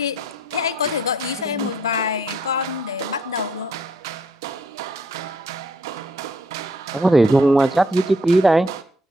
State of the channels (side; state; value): both; normal; correlation 0.67